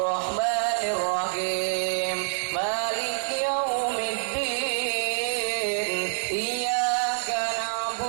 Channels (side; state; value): left; silent; 58 dB below the other